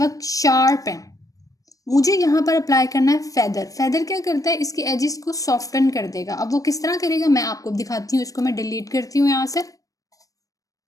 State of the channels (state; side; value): late; right; 0.16 ms